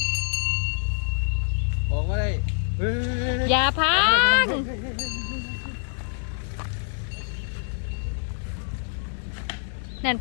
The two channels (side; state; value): right; silent; digital silence